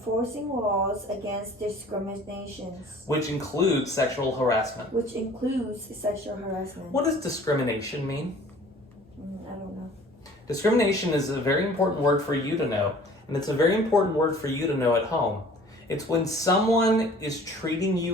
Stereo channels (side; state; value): both; normal; correlation 0.50